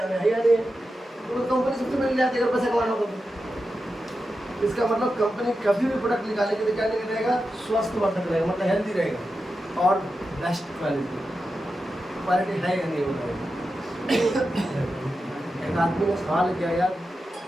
में, है या नहीं? तो कंपनी सबसे पहले जाती है अगर पैसा कमाना होगा तो। इसका मतलब कंपनी कभी भी प्रोडक्ट निकालेगी तो क्या नहीं रहेगा? स्वास्थ्यवर्धक रहेगा, मतलब हेल्दी रहेगा और बेस्ट क्वालिटी है या नहीं होगा। एक आदमी ने सवाल किया, यार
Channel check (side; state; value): both; normal; correlation 0.90